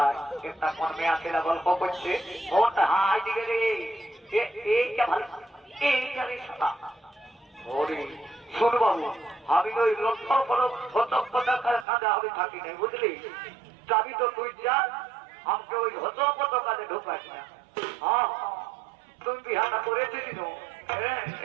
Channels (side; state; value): left; drops out; at 11.9 s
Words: একটা কোন মেয়া ছেলে গল্প করছে ওটা হাই দিকে রে এইটা ভালো এইটা রে সাদা ওরে শোন বাবু আমি তো ওই লক্ষ্য করো হতপটা কাজে আমি থাকি নাই বুঝলি যাবি তো তুই যা আমাকে ওই হতপট কাজে ঢোকাস না হ্যাঁ তুমি বিহাটা করেছিস না হ্যাঁ